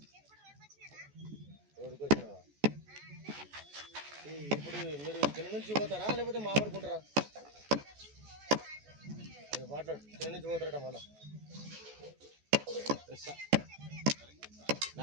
రోడ్డుకి వచ్చినావా? ఇప్పుడు మీరు ఇక్కడ నుంచి పోతారా లేకపోతే మామిడుకుంటారా? మాట్లాడు. ఇక్కడ నుంచి పోతారట మళ్ళా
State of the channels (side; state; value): left; late; 14 ms